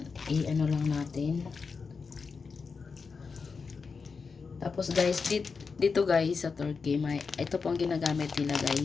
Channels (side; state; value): right; quieter; 5.1 dB